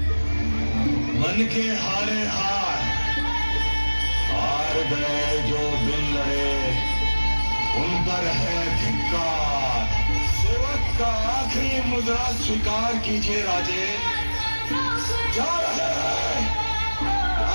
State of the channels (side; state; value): both; inverted; correlation -1.00